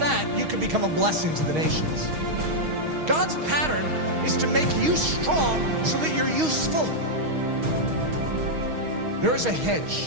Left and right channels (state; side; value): late; left; 6.4 ms